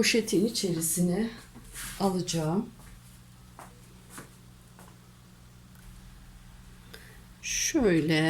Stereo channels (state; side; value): identical; both; correlation 1.00